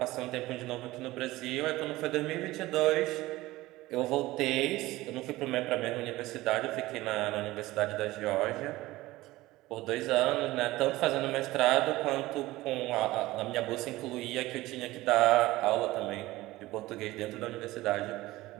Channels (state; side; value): quieter; left; 18.2 dB